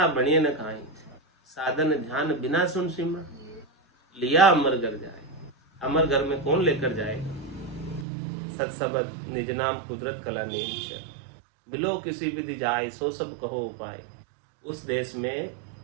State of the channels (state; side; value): drops out; left; at 8.1 s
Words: बनिए न खाए, साधन ध्यान बिना सुन सिमरा, लिया अमर घर जाए। अमर घर में कौन लेकर जाएगा? सत्सबद निज नाम कुदरत कला नेम, मिलो किसी विधि जाए, सो सब कहो उपाय। उस देश में